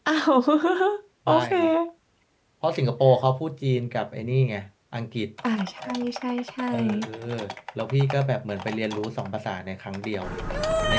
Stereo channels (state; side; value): identical; both; correlation 1.00